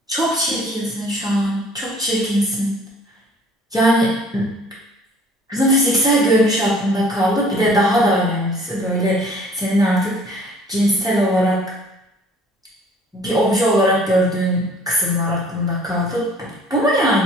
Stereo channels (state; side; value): normal; both; correlation 0.54